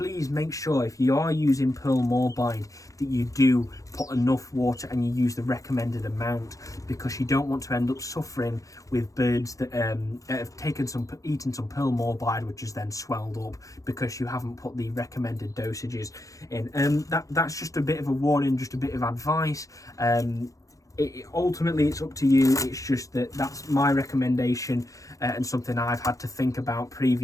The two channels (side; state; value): right; late; 0.16 ms